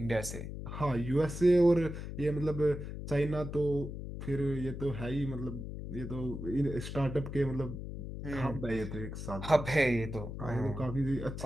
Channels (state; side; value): noise; left; hum, 7 dB below the sound